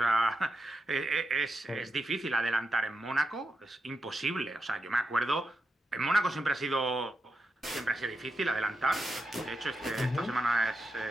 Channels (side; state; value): both; normal; correlation 0.86